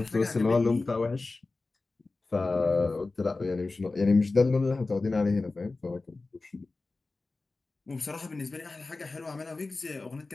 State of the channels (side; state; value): right; quieter; 3.5 dB